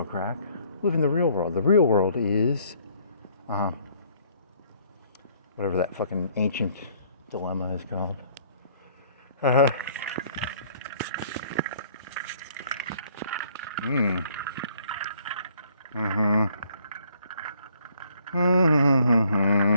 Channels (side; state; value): both; inverted; correlation -0.62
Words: crack. Live in the real world. The real world is whatever that fucking ancient dilemma is called.